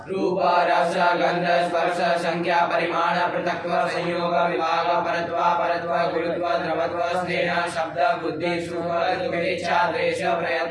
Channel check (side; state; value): both; identical; correlation 1.00